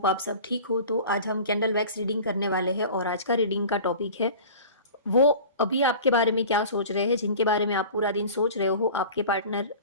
आप सब ठीक हो। तो आज हम कैंडल वैक्स रीडिंग करने वाले हैं और आज का रीडिंग का टॉपिक है, वो अभी आपके बारे में क्या सोच रहे हैं, जिनके बारे में आप पूरा दिन सोच रहे हो, आपके पार्टनर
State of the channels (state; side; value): inverted; both; correlation -0.39